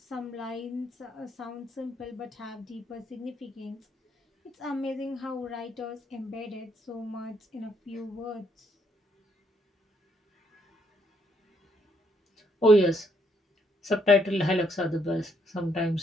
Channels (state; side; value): normal; both; correlation 0.72